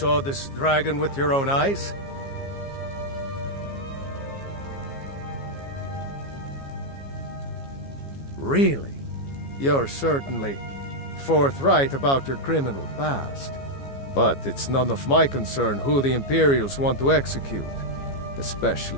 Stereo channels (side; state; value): right; late; 15 ms